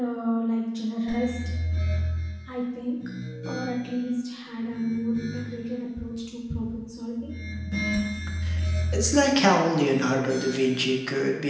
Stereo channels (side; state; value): both; identical; correlation 1.00